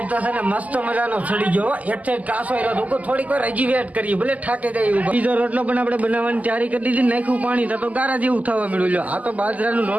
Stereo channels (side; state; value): left; late; 0.076 ms